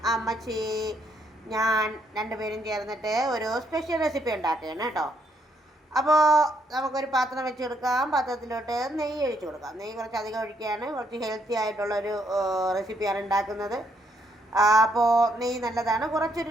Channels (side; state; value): both; normal; correlation 0.73